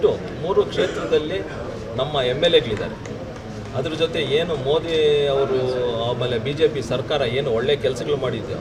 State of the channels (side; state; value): both; identical; correlation 1.00